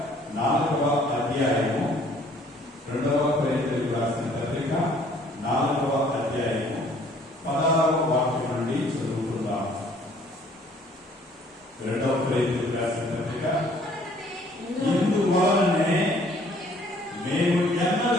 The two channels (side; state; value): both; normal; correlation 0.58